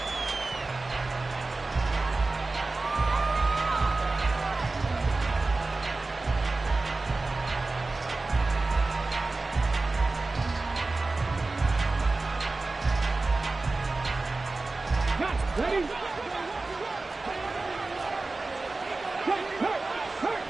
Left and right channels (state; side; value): quieter; left; 3.4 dB